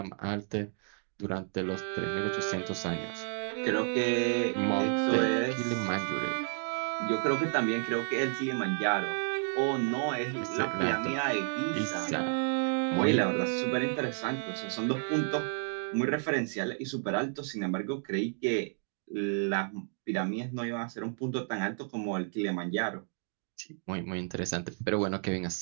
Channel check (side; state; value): left; silent; 57 dB below the other